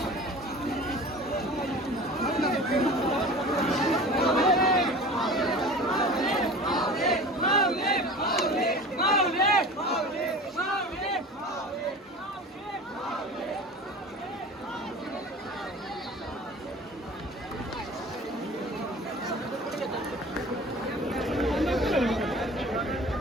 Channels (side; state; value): both; normal; correlation 0.39